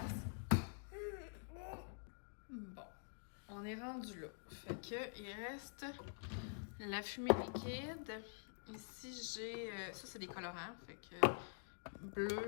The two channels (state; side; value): silent; right; digital silence